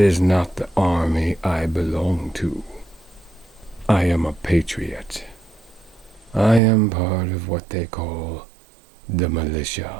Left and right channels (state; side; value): drops out; left; at 6.6 s